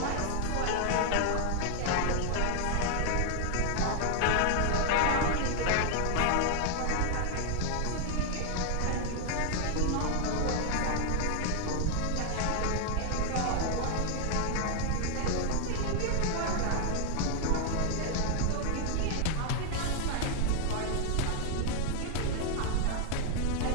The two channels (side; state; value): both; different; correlation 0.00